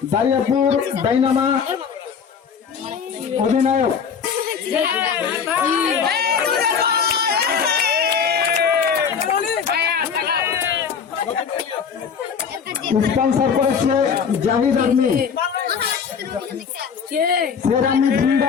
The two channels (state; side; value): quieter; right; 6.7 dB